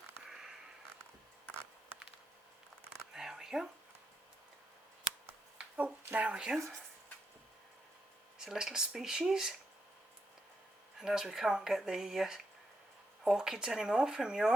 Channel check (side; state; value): both; normal; correlation 0.83